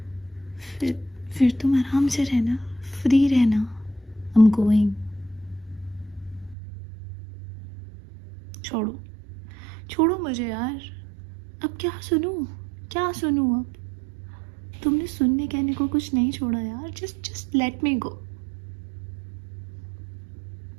फिर तुम आराम से रहना, फ्री रहना। I am going. छोड़ो, छोड़ो मुझे यार। अब क्या सुनूं अब? तुमने सुनने कहने को कुछ नहीं छोड़ा यार। जस्ट लेट मी गो।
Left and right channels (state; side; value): drops out; left; at 6.6 s